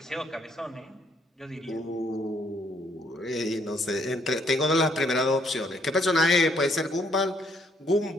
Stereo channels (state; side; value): normal; both; correlation 0.69